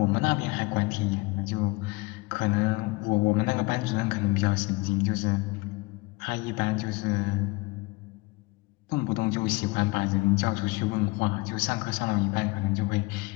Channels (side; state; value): right; quieter; 24.6 dB